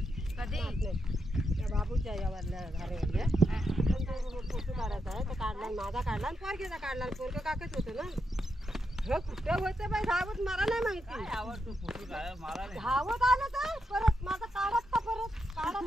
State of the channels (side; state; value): both; normal; correlation 0.84